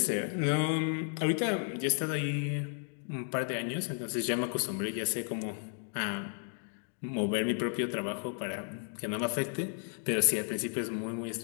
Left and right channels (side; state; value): right; silent; 55 dB below the other